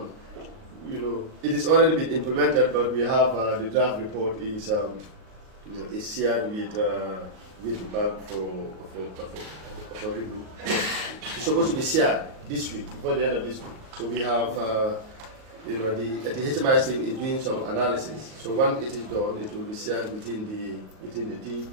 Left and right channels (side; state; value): left; late; 38 ms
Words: It is already been implemented, but we have the draft report is shared with the bank for review. It's supposed to be shared this week, before the end of this week. So we have, the HMIC is doing some analysis. So once it is done, it will be shared within the team,